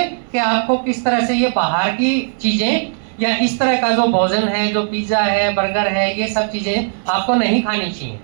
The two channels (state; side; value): silent; left; digital silence